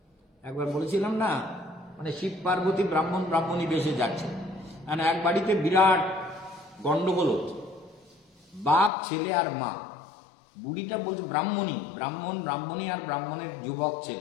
একবার বলেছিলাম না, মানে শিব পার্বতী ব্রাহ্মণী বেশে যাচ্ছে, মানে এক বাড়িতে বিরাট গন্ডগোল হচ্ছে, বাপ, ছেলে আর মা। বুড়িটা বলছে, ব্রাহ্মণী আর ব্রাহ্মণের যুবক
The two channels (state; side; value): drops out; right; at 8.9 s